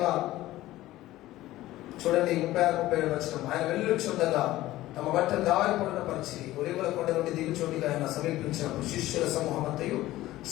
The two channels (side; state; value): right; quieter; 16.1 dB